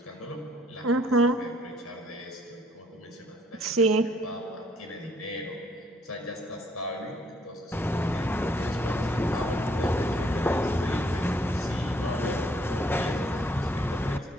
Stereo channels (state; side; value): normal; both; correlation 0.63